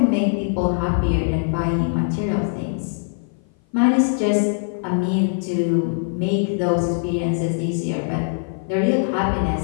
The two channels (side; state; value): right; silent; 56 dB below the other